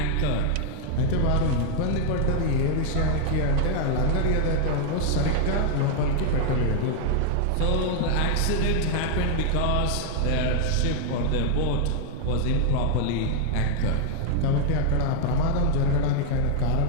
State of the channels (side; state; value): both; different; correlation 0.00